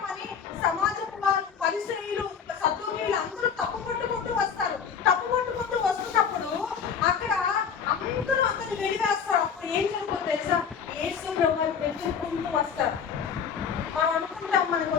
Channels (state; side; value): quieter; right; 7.0 dB